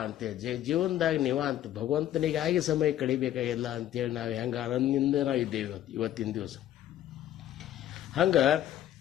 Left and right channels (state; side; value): quieter; right; 12.1 dB